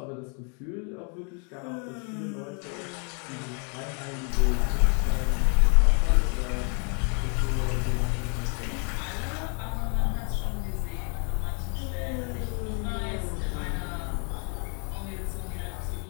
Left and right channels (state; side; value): quieter; right; 38.2 dB